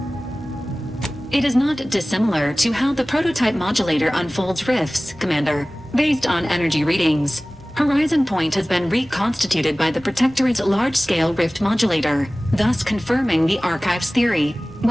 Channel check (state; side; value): normal; both; correlation 0.98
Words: It is not dissimilar to how the prototype modulator unfolds rifts, Commander, based on energy readings. Horizon Point has been reconstituted by the Protectorate's large-scale rift modulator, thus confirming the Archive's theory.